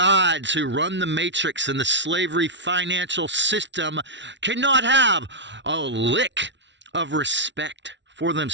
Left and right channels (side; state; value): left; late; 0.52 ms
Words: who run the matrix and the slavery financial system cannot have a lick of respect for